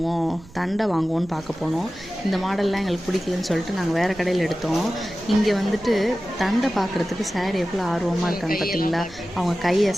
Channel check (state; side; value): noise; right; rumble, 22 dB below the sound